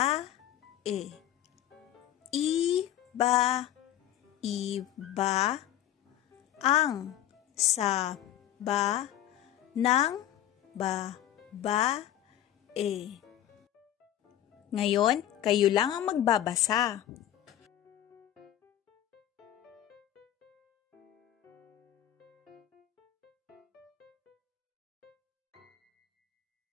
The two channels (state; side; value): quieter; right; 12.0 dB